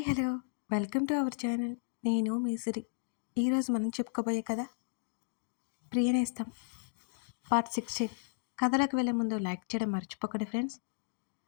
hello welcome to our channel. నేను మీ సిరి. ఈరోజు మనం చెప్పుకోబోయే కథ ప్రియనేస్తం పార్ట్ 16. కథలకు వెళ్ళే ముందు లైక్ చేయడం మర్చిపోకండి ఫ్రెండ్స్.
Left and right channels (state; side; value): silent; right; digital silence